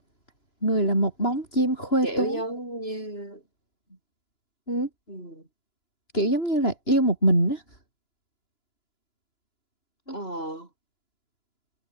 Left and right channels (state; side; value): late; right; 2.9 ms